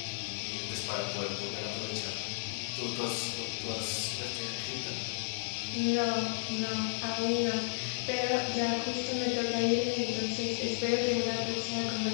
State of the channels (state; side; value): silent; right; digital silence